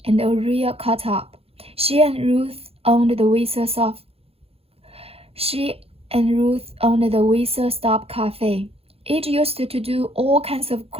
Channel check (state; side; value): late; left; 0.28 ms